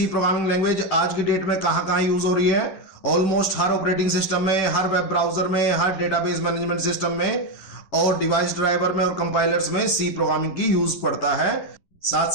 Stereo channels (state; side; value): late; right; 11 ms